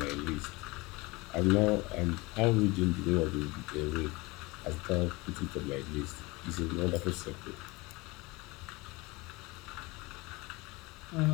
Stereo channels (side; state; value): right; quieter; 23.5 dB